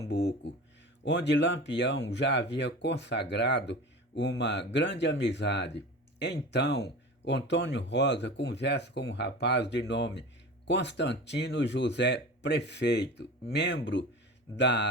onde Lampião já havia consagrado uma grande amizade. Então, Antônio Rosa conversa com um rapaz de nome Constantino José Prefeito, membro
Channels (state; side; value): normal; both; correlation 0.34